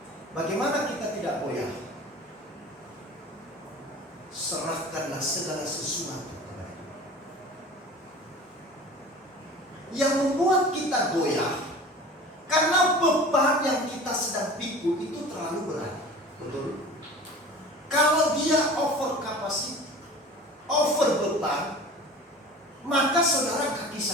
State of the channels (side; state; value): both; normal; correlation 0.40